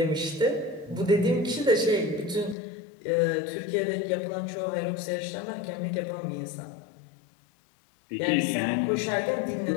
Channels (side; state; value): right; drops out; at 2.6 s